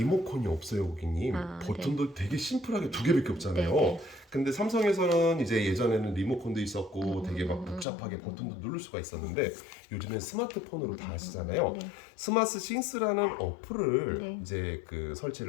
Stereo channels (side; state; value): right; drops out; at 7.9 s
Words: 없어요, 고객님. 버튼도 되게 심플하게 2개밖에 없잖아요. 네. 근데 삼성에서는 이제 예전에는 리모컨도 있었고 되게 막 복잡하게 버튼도 누를 수가 있었는데 요즘엔 스마트폰으로 다 하시잖아요. 네. 스마트 싱스라는 어플을 네. 이제